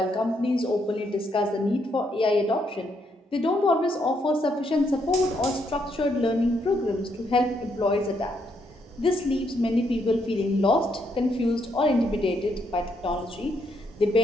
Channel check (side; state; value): both; normal; correlation 0.75